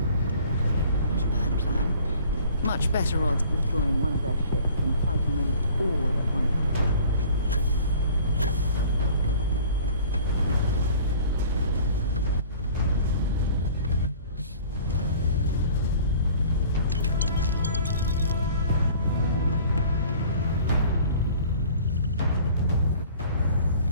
Not a bad plan. Much better odds of destroying one of their ships than fighting them all at once.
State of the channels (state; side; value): inverted; both; correlation -0.49